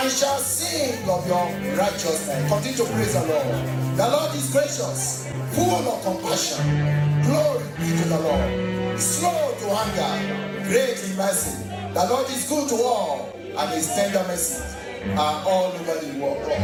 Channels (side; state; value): both; identical; correlation 1.00